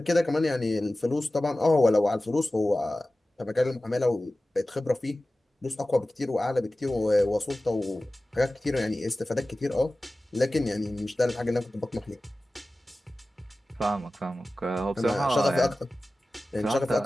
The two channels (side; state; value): both; normal; correlation 0.96